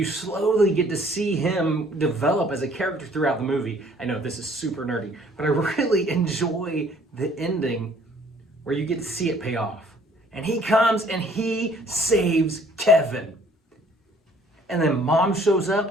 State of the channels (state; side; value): normal; both; correlation 0.58